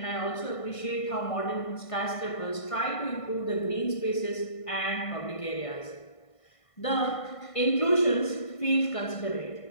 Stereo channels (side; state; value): right; late; 1.5 ms